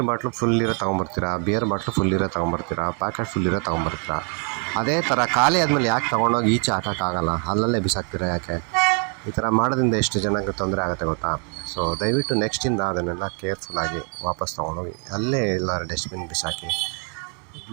ಬಾಟ್ಲು ಫುಲ್ ಇರೋ ತೊಗೊಂಬರ್ತೀರಾ, ಬಿಯರ್ ಬಾಟ್ಲು ಫುಲ್ ಇರೋ ತೊಗೊಂಬರ್ತೀರಾ, ಪ್ಯಾಕೆಟ್ ಫುಲ್ ಇರೋ ತೊಗೊಂಬರ್ತೀರಾ. ಅದೇ ಥರ ಖಾಲಿ ಆದಮೇಲೆ ಯಾಕೆ ತೊಗೊಂಡೋಗಿ ಈಚೆ ಹಾಕೋಕ್ಕಾಗಲ್ಲ, ಅಲ್ಲಲ್ಲೇ ಬಿಸಾಕ್ತೀರಾ ಯಾಕೆ? ಈ ಥರ ಮಾಡೋದ್ರಿಂದ ಎಷ್ಟು ಜನಕ್ಕೆ ತೊಂದರೆ ಆಗುತ್ತೆ ಗೊತ್ತಾ? ಸೊ ದಯವಿಟ್ಟು ನೆಕ್ಸ್ಟಿಂದ ಅದನ್ನೆಲ್ಲ ಕೇರ್ಫುಲ್ಲಾಗಿ ವಾಪಸ್ ತೊಗೊಂಡೋಗಿ ಅಲ್ಲೇ ಎಲ್ಲರೂ ಡಸ್ಟ್ಬಿನ್ ಬಿಸಾಕಿ.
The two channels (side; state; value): left; quieter; 38.7 dB